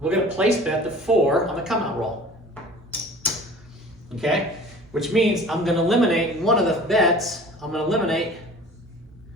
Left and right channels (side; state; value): both; normal; correlation 0.44